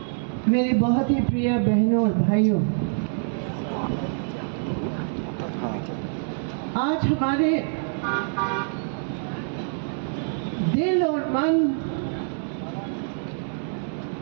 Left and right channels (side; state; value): left; silent; 61 dB below the other